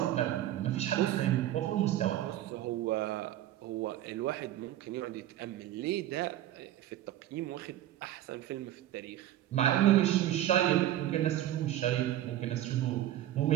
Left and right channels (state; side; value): quieter; left; 13.0 dB